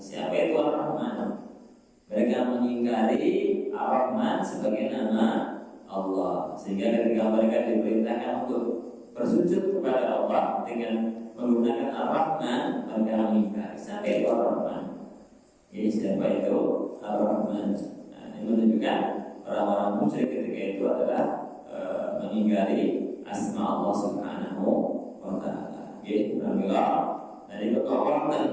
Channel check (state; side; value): identical; both; correlation 1.00